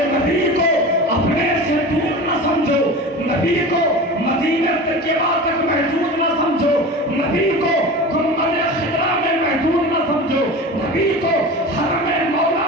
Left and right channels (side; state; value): both; normal; correlation 0.32